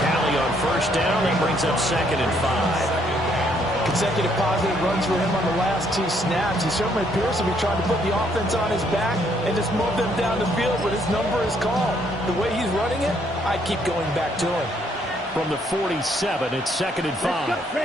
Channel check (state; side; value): normal; both; correlation 0.69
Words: on first down. That brings up 2nd and 5. Consecutive positive runs for him on the last 2 snaps. He certainly appears to be trying to put the offense on his back and just move them down the field, but his number is called. The way he's running it, I keep going back to him. From the 47, it's 2nd and 5. Let's